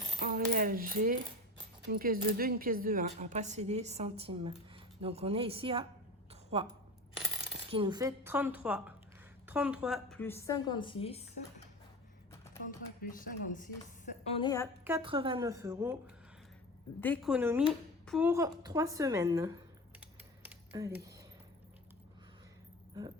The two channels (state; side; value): normal; both; correlation 0.31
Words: en réel, j'ai une pièce de 2, une pièce de 1. Après, c'est des centimes. Donc, on est ici à 3. Ce qui nous fait 33. 33 plus 56. 33 plus 56. On est à 89 € d'économie pour 3 semaines. Allez. Hop.